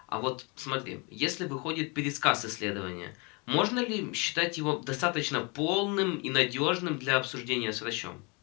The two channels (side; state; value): right; quieter; 30.3 dB